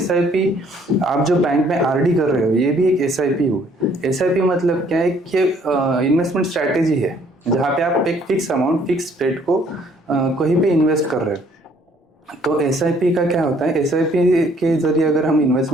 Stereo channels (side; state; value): both; normal; correlation 0.62